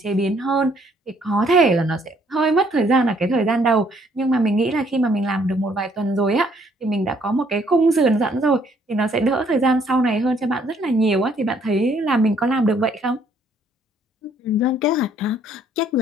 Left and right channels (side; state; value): both; normal; correlation 0.65